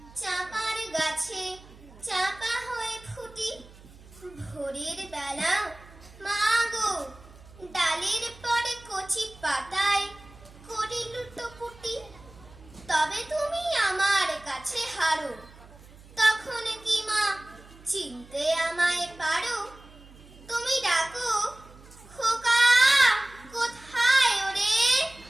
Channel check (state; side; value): noise; right; hum, 22 dB below the sound